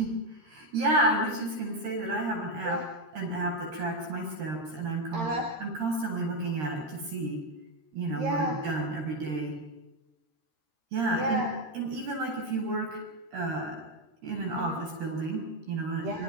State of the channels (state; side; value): late; left; 13 ms